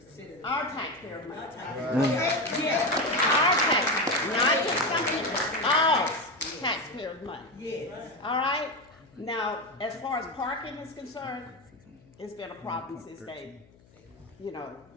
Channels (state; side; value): noise; left; hum, 28 dB below the sound